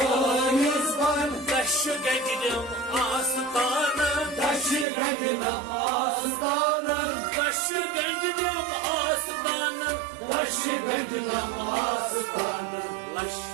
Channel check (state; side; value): drops out; left; at 4.9 s